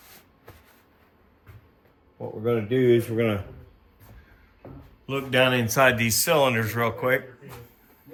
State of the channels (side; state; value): both; identical; correlation 1.00